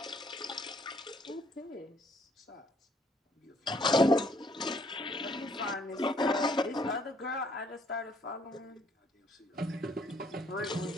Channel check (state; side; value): normal; both; correlation 0.65